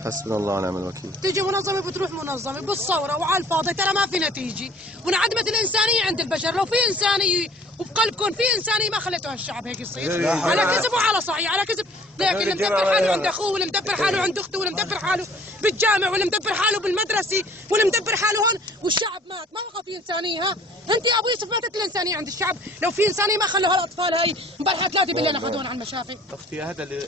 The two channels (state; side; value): normal; both; correlation 0.53